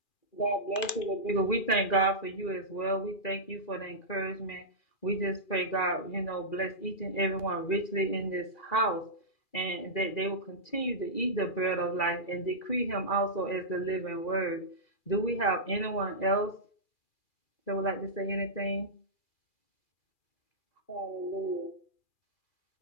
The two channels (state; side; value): late; right; 2.4 ms